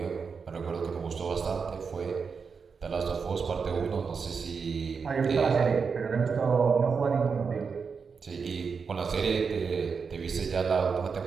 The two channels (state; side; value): quieter; left; 5.5 dB